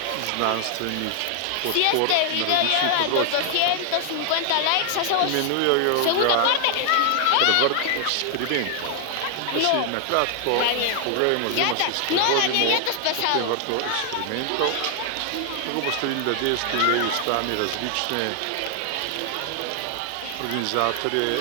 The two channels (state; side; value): different; both; correlation 0.00